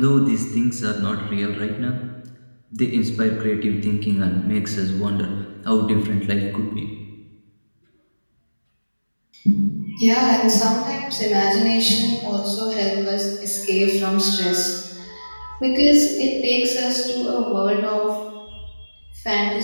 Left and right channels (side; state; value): both; inverted; correlation -1.00